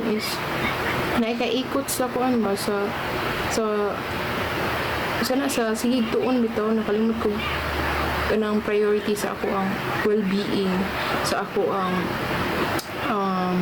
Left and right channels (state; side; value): identical; both; correlation 1.00